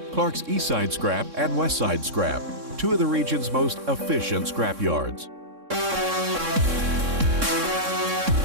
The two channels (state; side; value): late; left; 3.6 ms